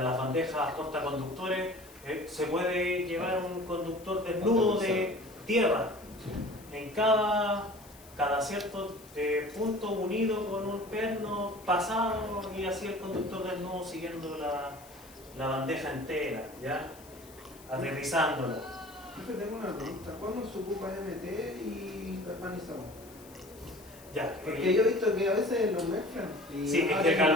las bandejas portaconductores se puede llevar un conductor desnudo de tierra en cada cierto punto unido con un perno pasado y así el conductor desnudo siguiendo la bandeja entera, ¿ya? Aterrizándola. Profe, tengo una pregunta. ¿Cuándo se ocupa MT y galvanizado? Ya, Porque yo he visto que a veces lo mezclan. Y sí, es que el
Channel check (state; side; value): noise; left; hiss, 22 dB below the sound